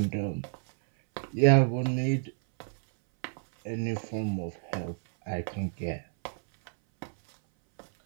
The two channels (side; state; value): left; silent; 58 dB below the other